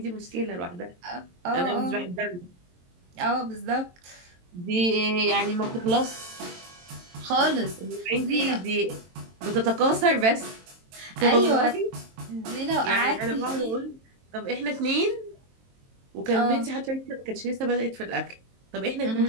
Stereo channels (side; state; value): left; late; 22 ms